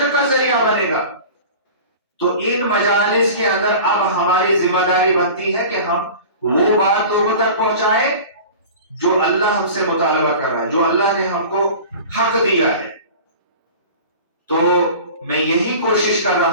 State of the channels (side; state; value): both; inverted; correlation -0.38